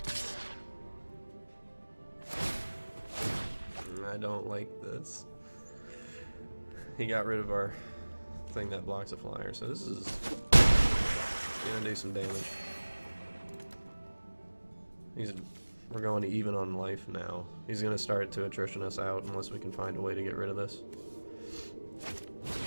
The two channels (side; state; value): both; inverted; correlation -1.00